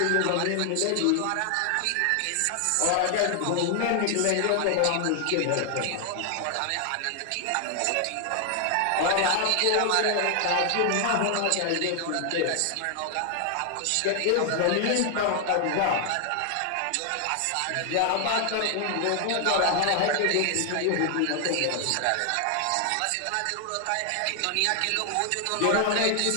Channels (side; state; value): both; different; correlation 0.00